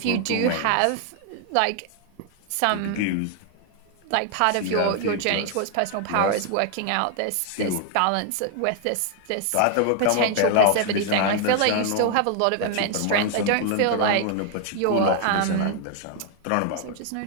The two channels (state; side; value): different; both; correlation 0.00